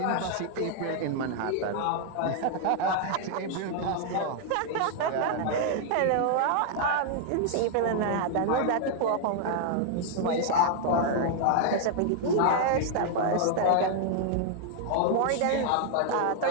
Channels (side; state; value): both; different; correlation 0.00